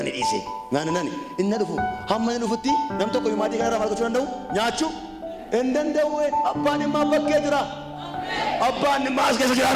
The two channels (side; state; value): both; identical; correlation 1.00